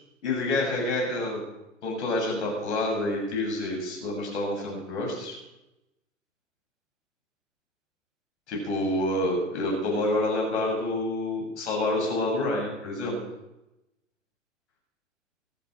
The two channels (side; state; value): both; normal; correlation 0.34